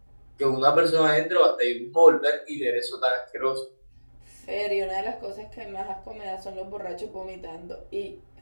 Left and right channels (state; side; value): inverted; both; correlation -1.00